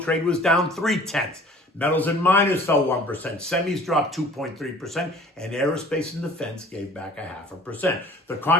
trade was down 0.3. Metals and miners fell 1%, semis dropped 2.3%, and aerospace and defense gave back 0.5%. The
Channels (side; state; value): both; normal; correlation 0.49